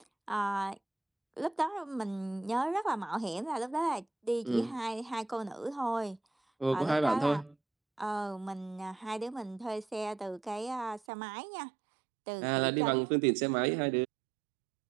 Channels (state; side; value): drops out; left; at 11.0 s